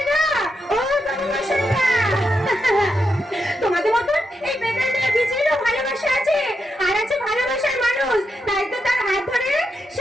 ও বাবু মশাইরা, তোমাদের মতন এই বেদের মেয়ে বিজলিরও ভালোবাসা আছে, আর আছে ভালোবাসার মানুষ। তাই তো তার হাত ধরে সে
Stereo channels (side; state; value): both; normal; correlation 0.84